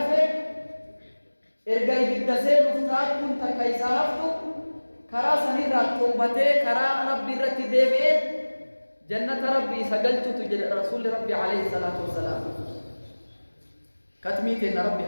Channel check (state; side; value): inverted; both; correlation -1.00